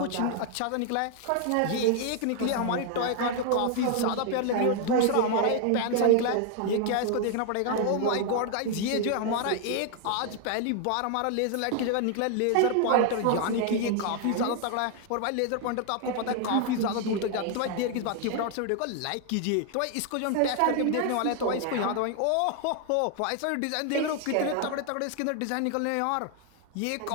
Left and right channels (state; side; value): different; both; correlation 0.00